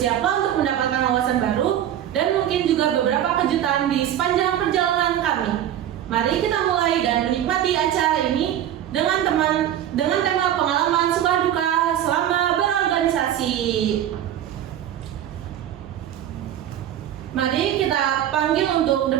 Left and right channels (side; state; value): left; quieter; 11.1 dB